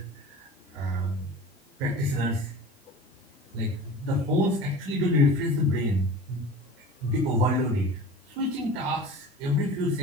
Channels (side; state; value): both; normal; correlation 0.37